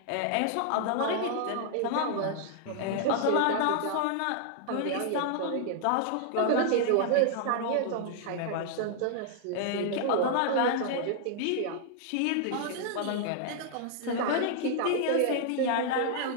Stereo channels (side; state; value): both; different; correlation -0.01